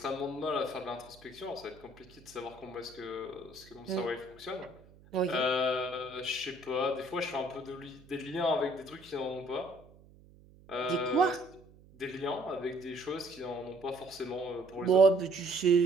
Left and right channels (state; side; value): noise; right; hum, 24 dB below the sound